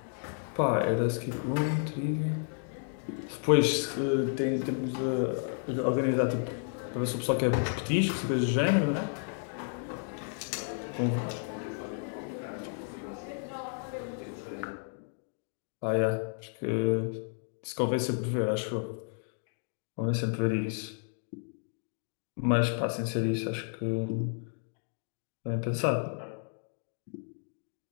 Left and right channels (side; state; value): right; silent; 56 dB below the other